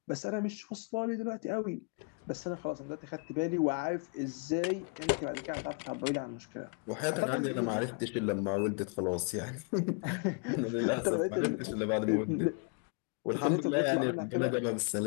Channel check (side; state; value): right; quieter; 36.2 dB